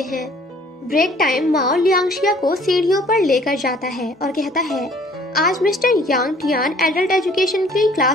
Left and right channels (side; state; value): both; normal; correlation 0.56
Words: हैं। ब्रेक टाइम माओ लियांगशिया को सीढ़ियों पर लेकर जाता है और कहता है आज मिस्टर यांग टियान एडल्ट एजुकेशन की